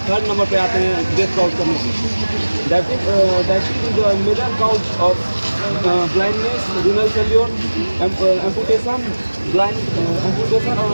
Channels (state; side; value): inverted; both; correlation -1.00